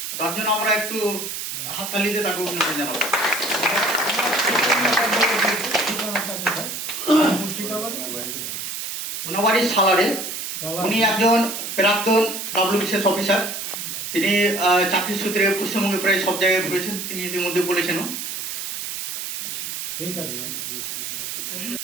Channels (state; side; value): noise; right; hiss, 5 dB below the sound